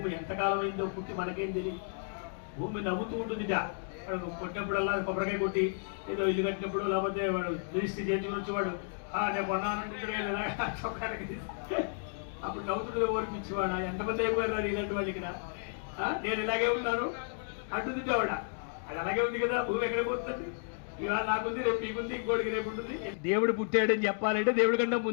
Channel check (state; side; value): silent; right; digital silence